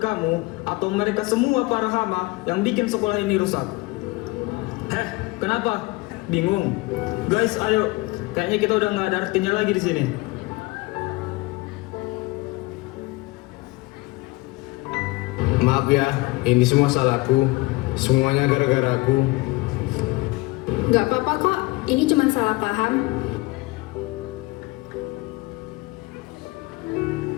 kamu atau mereka semua para hama yang bikin sekolah ini rusak? Kenapa? Bingung? Guys, ayo. Kayaknya kita udah nggak ada artinya lagi di sini. Maaf ya, ini semua salahku. Semuanya gara-gara aku. Nggak apa-apa kok, ini cuma salah paham.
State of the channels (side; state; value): right; quieter; 22.7 dB